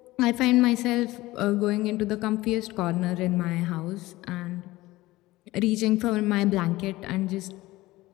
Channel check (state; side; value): quieter; right; 18.5 dB